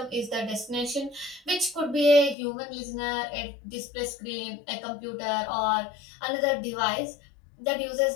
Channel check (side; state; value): right; drops out; at 2.4 s